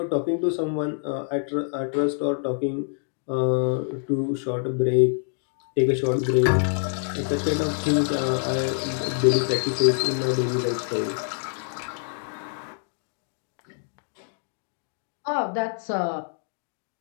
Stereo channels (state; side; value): silent; right; digital silence